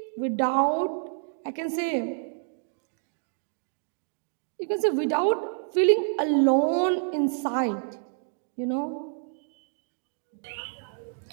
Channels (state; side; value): silent; left; digital silence